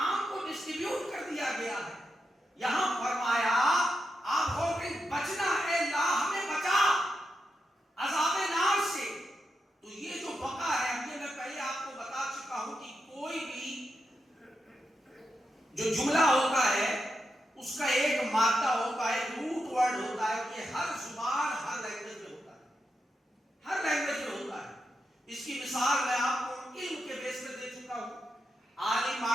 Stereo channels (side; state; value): both; normal; correlation 0.86